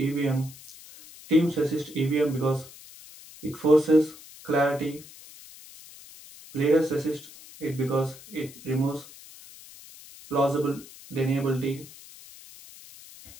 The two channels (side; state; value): left; noise; hiss, 19 dB below the sound